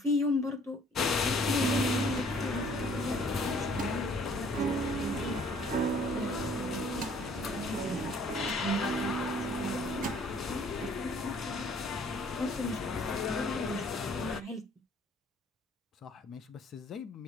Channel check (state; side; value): normal; both; correlation 0.58